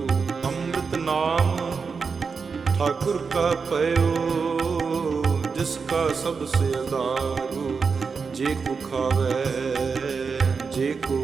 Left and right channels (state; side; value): quieter; left; 5.2 dB